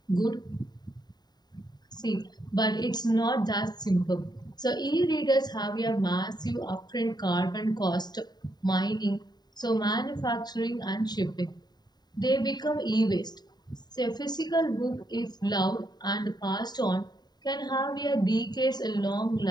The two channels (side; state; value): right; late; 0.20 ms